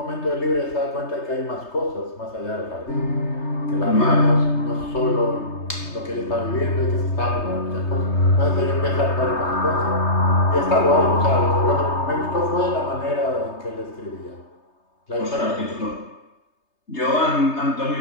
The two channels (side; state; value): right; late; 3.3 ms